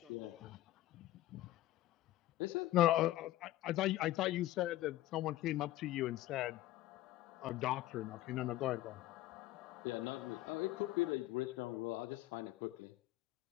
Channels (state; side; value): quieter; right; 15.5 dB